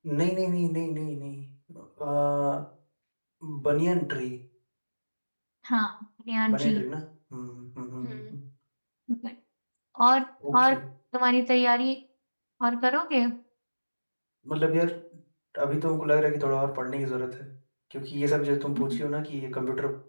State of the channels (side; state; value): both; inverted; correlation -1.00